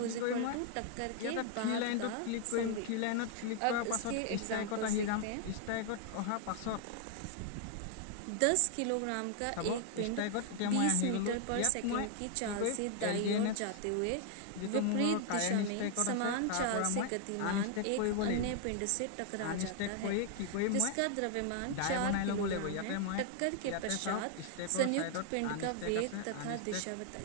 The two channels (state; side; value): different; both; correlation 0.00